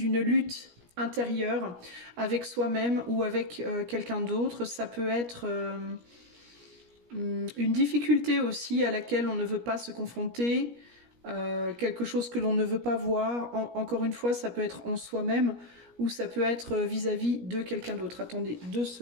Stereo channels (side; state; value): left; late; 17 ms